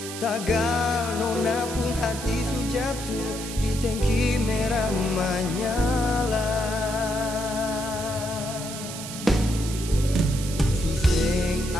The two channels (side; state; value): right; noise; hiss, 9 dB below the sound